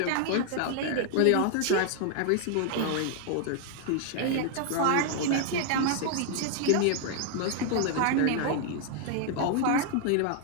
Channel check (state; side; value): different; both; correlation 0.00